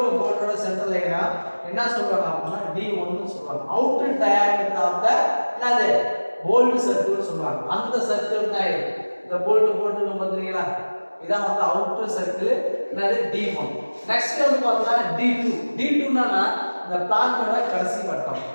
போல்டோட சென்டர் லைனும் என்ன சொல்றாங்க அப்படின்னா D1 னு சொல்றாங்க. அவுட்டர் டயாமீட்டர் ஆஃப் தி என்னது போல்ட் சர்க்கிள் சொல்றாங்க. அந்த சர்க்கிள் தான் இது. இந்த போல்ட் போட்டு பாத்தீங்களா? இதான் வந்து அவுட்டர் சர்க்கிள் என்னது D1. நெக்ஸ்ட் வந்து பார்த்தா D2. D2 னா இந்த பிளான்ட்டோட கடைசி வட்டம்.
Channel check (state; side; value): inverted; both; correlation -1.00